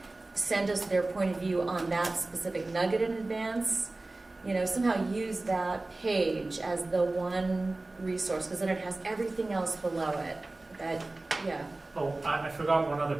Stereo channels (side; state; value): left; quieter; 3.0 dB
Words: send us their point of view on that specific nugget in advance, you know, somehow use that page as the one resource, because then it has everything else below it. That, yeah. Oh, I forgot one other